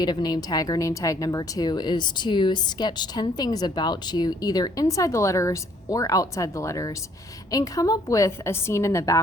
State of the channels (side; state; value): both; normal; correlation 0.63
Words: name tag, or name tag number 2, is to sketch 10 things about you, either inside the letters or outside the letters, and come up with a scene in the